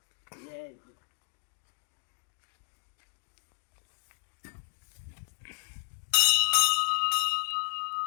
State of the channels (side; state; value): right; silent; digital silence